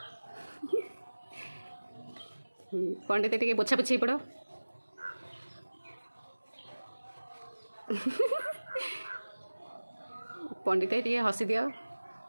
पंडित टे पोछा पोछी पड़ पंडित टे हसी दियो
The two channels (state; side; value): inverted; both; correlation -1.00